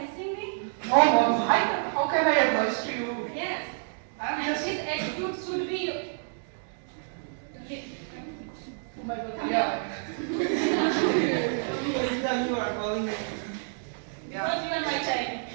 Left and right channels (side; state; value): left; silent; digital silence